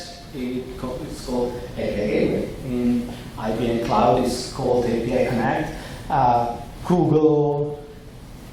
it's called API Gateway. In IBM Cloud, it's called API Connect. Google,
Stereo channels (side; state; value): both; identical; correlation 1.00